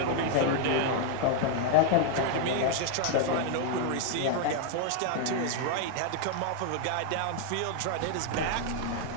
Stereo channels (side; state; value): both; different; correlation 0.00